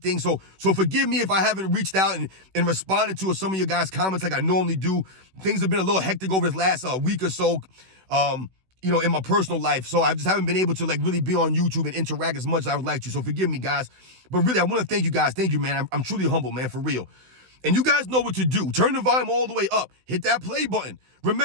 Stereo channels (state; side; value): late; left; 16 ms